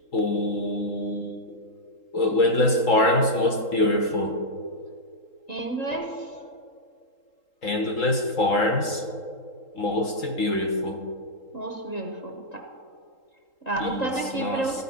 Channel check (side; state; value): right; late; 3.8 ms